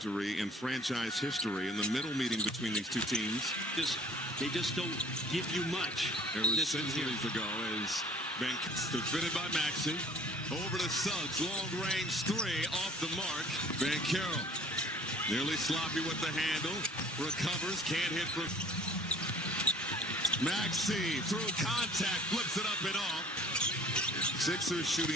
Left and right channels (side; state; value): both; normal; correlation 0.52